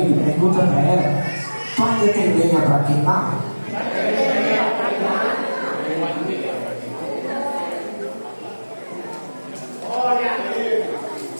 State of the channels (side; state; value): both; inverted; correlation -1.00